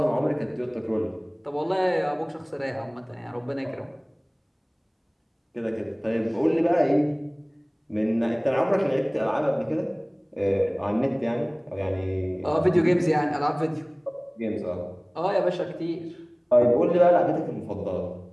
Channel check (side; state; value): both; identical; correlation 1.00